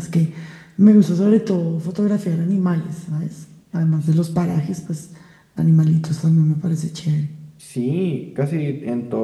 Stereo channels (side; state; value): both; identical; correlation 1.00